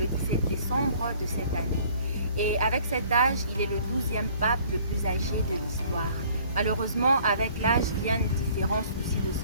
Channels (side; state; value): both; inverted; correlation -0.55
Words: 17 décembre de cette année. Et avec cet âge, il est le 12e pape le plus âgé de l'histoire. Malheureusement, avec l'âge viennent différents soucis de